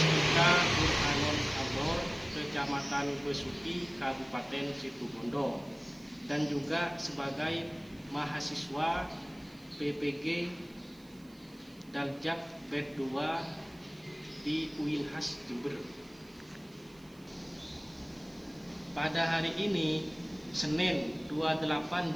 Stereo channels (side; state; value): right; noise; hiss, 27 dB below the sound